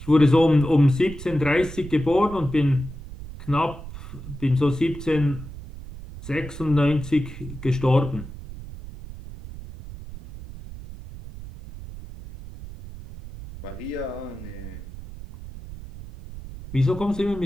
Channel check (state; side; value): noise; right; rumble, 13 dB below the sound